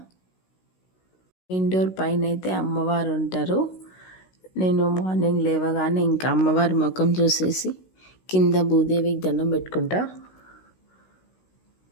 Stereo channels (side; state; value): right; late; 16 ms